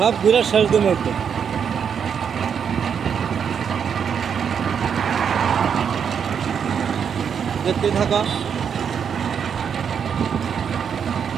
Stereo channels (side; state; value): left; quieter; 7.3 dB